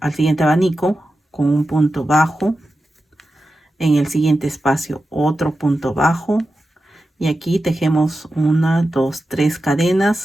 abanico con un punto bajo. En el siguiente espacio otro punto bajo. Y aquí tejemos 1, 2, 3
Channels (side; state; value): both; normal; correlation 0.91